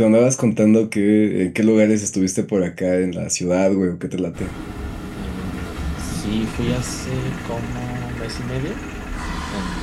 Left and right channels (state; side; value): identical; both; correlation 1.00